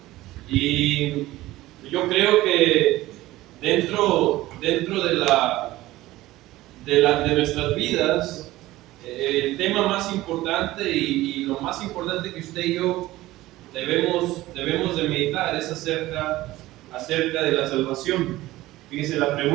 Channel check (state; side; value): quieter; left; 17.1 dB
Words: Y yo creo que dentro de nuestras vidas, el tema más importante y lo más importante que usted y yo debemos de meditar es acerca de la salvación. Fíjese, la